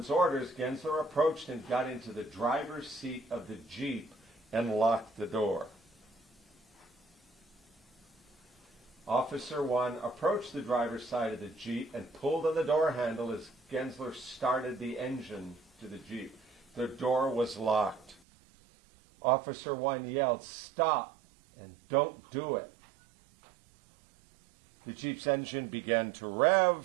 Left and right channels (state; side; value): drops out; left; at 18.2 s